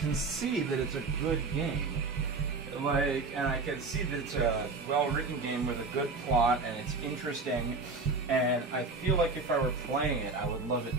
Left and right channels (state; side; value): quieter; left; 3.8 dB